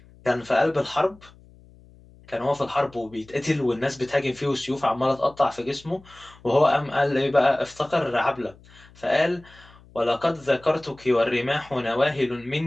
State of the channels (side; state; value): left; noise; hum, 25 dB below the sound